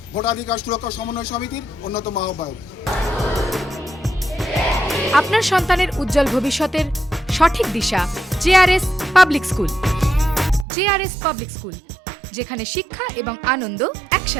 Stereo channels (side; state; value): left; drops out; at 10.7 s